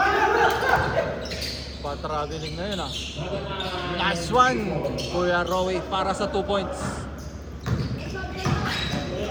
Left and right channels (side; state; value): both; identical; correlation 1.00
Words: Pa-traveling na yun ah. Nice one! Kuya Rowie para sa 2 points.